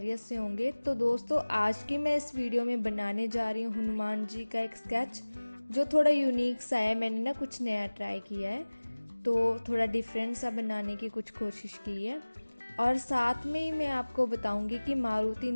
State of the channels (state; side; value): inverted; both; correlation -1.00